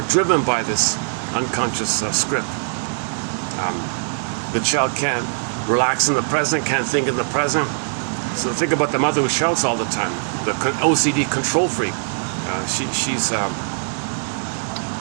driven by this unconscious script. The child can't relax in the present, can't think in the present. So think about the mother who shouts all the time, the OCD control freak.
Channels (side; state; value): left; silent; 65 dB below the other